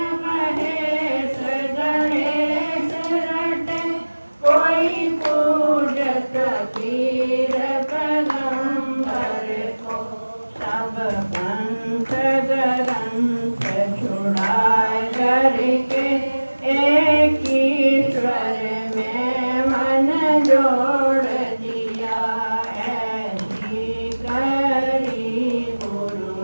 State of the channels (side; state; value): both; inverted; correlation -1.00